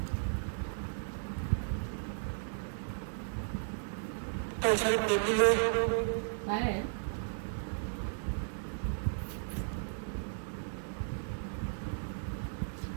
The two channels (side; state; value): left; silent; 54 dB below the other